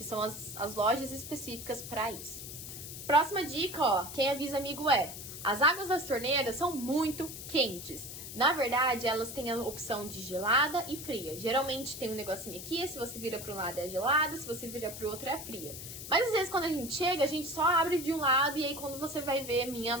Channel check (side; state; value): left; noise; hiss, 10 dB below the sound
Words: são as lojas específicas para isso. Próxima dica, ó. Quem avisa amigo é: as águas das torneiras são muito quentes. Na verdade, elas têm a opção de gelada e fria. Geralmente tem um negocinho aqui, se você vira para um lado é gelada, se você vira para o outro é fria. Mas às vezes quando a gente chega, a gente só abre de um lado e aí quando você vai ver, minha